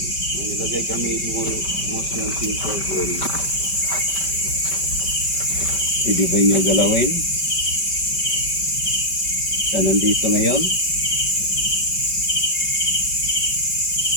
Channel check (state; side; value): late; right; 5.1 ms